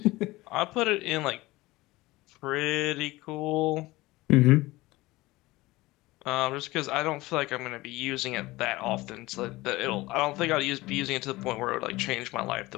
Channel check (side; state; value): right; quieter; 19.9 dB